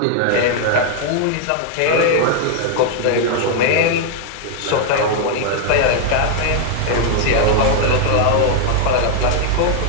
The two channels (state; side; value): different; both; correlation 0.00